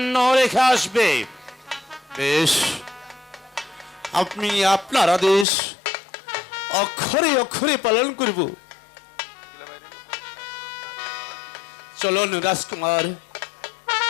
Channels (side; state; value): right; drops out; at 5.5 s